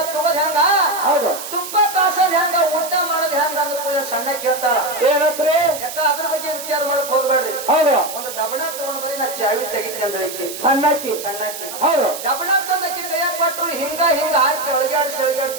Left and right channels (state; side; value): noise; right; hiss, 9 dB below the sound